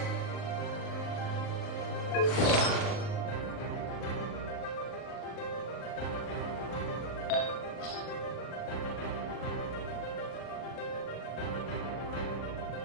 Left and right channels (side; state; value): right; late; 40 ms